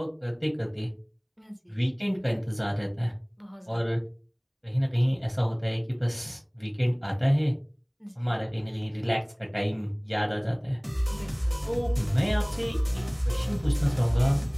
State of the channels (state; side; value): identical; both; correlation 1.00